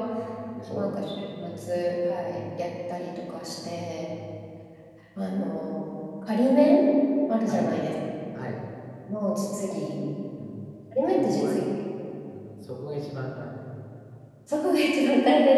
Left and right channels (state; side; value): identical; both; correlation 1.00